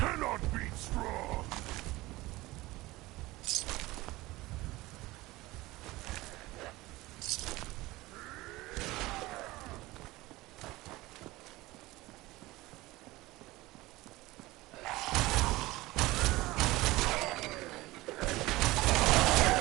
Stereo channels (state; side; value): quieter; left; 19.5 dB